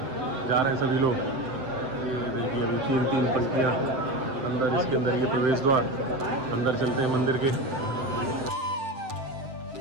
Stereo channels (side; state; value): left; late; 7.7 ms